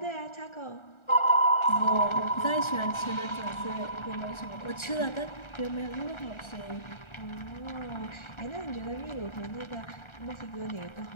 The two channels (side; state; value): right; late; 1.4 ms